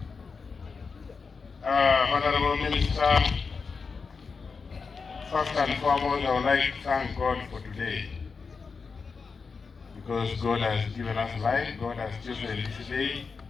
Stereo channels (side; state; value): right; quieter; 5.0 dB